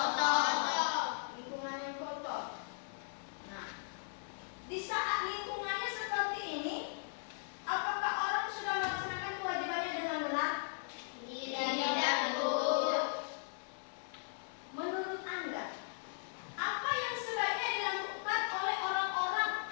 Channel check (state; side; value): silent; right; 53 dB below the other